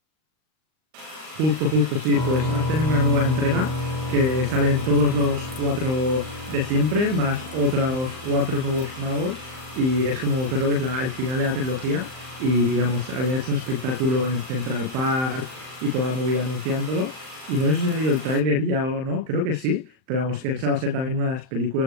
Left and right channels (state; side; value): late; left; 39 ms